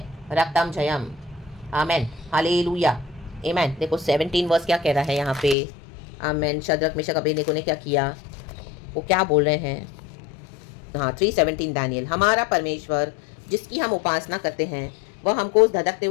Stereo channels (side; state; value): right; drops out; at 5.6 s